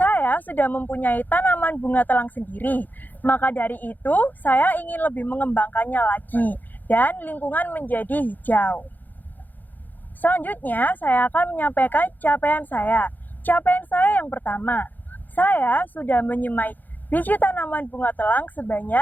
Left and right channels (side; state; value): right; late; 0.085 ms